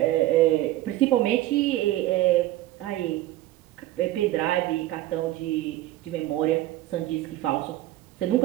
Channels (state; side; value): quieter; left; 15.5 dB